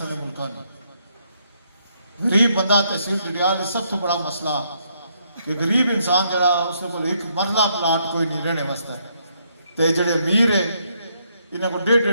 ملکوں میں غریب بندہ تحصیل ڈڈیال سب تو بڑا مسئلہ کہ غریب انسان جڑا اس کو ایک مرلہ پلاٹ کوئی نہیں رہنے واسطے تے جڑے امیر ہے انہیں کو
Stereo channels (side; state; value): both; inverted; correlation -0.74